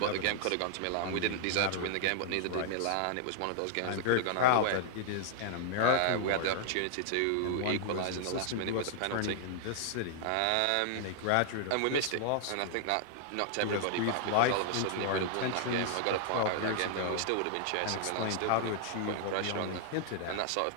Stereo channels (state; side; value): different; both; correlation -0.01